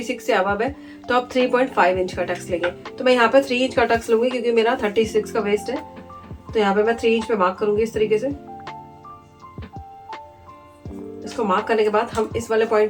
से अबव है तो आप 3.5 इंच का टक्स लेंगे। तो मैं यहाँ पे 3 इंच का टक्स लूंगी क्योंकि मेरा 36 का वेस्ट है, तो यहाँ पे मैं 3 इंच पे मार्क करूंगी इस तरीके से। इसको मार्क करने के बाद हम इस वाले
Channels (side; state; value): both; identical; correlation 1.00